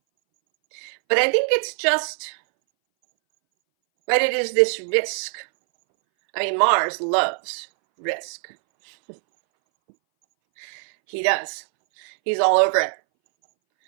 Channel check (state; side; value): silent; left; 62 dB below the other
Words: But I think it's just, right, it is this risk. I mean, Mars loves risk. He does. He's all over it.